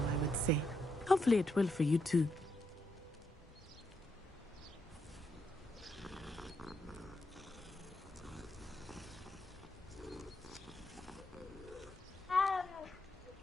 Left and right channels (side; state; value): both; normal; correlation 0.80